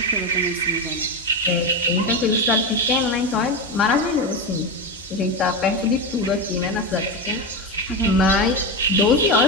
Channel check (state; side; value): normal; both; correlation 0.16